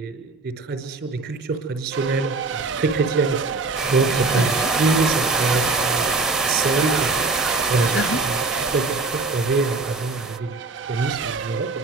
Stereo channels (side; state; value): left; quieter; 3.7 dB